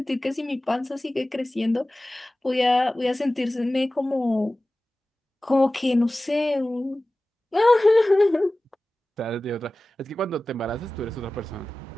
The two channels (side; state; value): both; normal; correlation 0.97